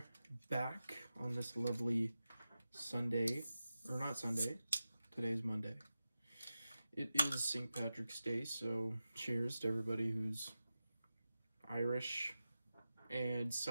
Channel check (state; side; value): inverted; both; correlation -0.93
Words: back on this lovely Sunday, or not Sunday, today's Monday. It is St. Patrick's Day, so cheers to everybody who's Irish and